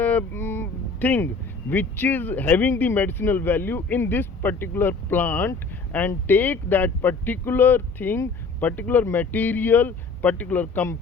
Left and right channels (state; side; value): quieter; right; 4.0 dB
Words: thing which is having the medicinal value in this particular plant, and take that particular thing, particular material, particular